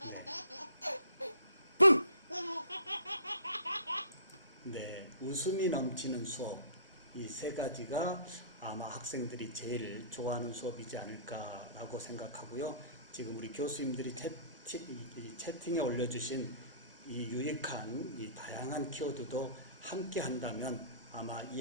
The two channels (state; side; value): inverted; both; correlation -0.47